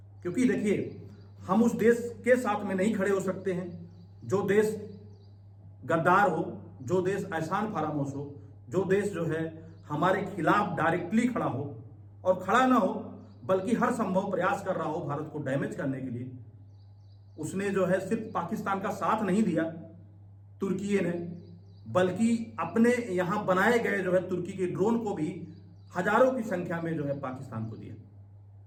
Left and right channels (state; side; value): identical; both; correlation 1.00